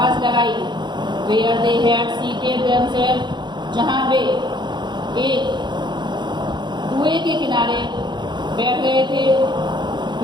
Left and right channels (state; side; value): late; left; 0.22 ms